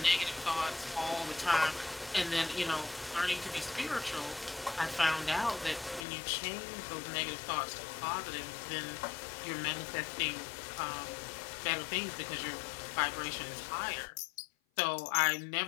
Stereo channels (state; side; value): drops out; right; at 6.1 s